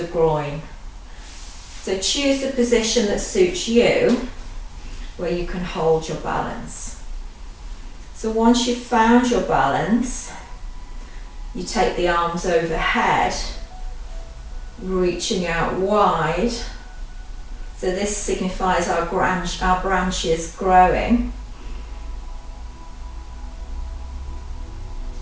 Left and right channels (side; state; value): both; identical; correlation 1.00